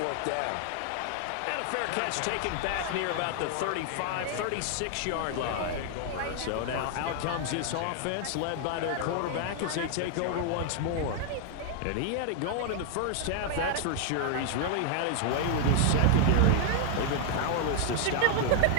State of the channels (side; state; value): both; different; correlation 0.00